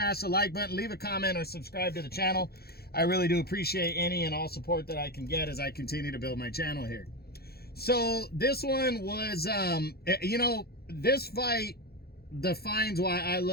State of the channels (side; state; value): right; late; 0.46 ms